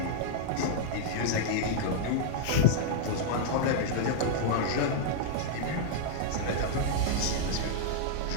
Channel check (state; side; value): different; both; correlation -0.01